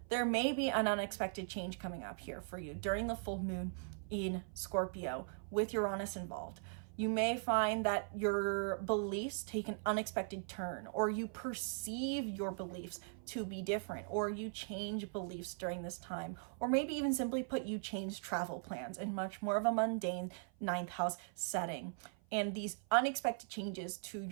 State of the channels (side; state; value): left; silent; 51 dB below the other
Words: there may be an unexpected change coming up here for you during the full moon in Scorpio with Uranus involved. You may find that your beliefs take an unexpected turn, or you perceive your beliefs to be different, or you change beliefs during this time, or maybe even simply put, you change travel plans in much more of a mundane 9th house setting. And these unexpected changes to